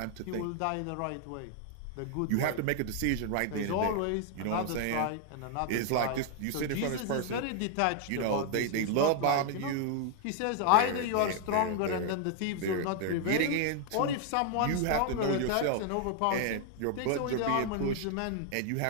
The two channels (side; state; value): both; different; correlation 0.00